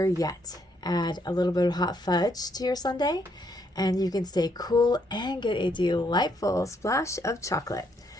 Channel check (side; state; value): both; normal; correlation 0.73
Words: yet, add a little bit of hot fudge to your sundae and you can stay cool and get a delightful splash of chocolate.